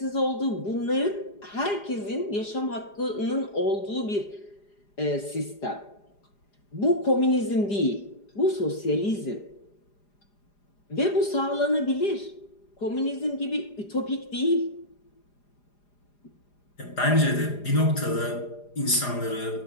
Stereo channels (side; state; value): right; late; 4.9 ms